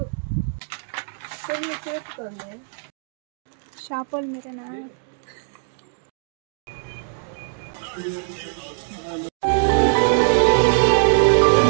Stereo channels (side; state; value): left; silent; digital silence